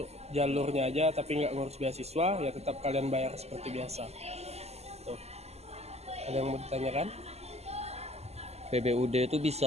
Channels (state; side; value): late; left; 0.30 ms